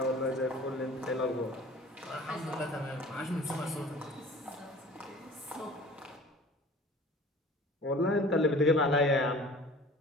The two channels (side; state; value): both; normal; correlation 0.45